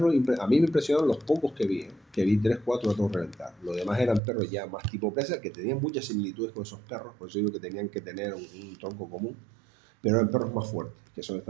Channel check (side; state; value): left; drops out; at 4.2 s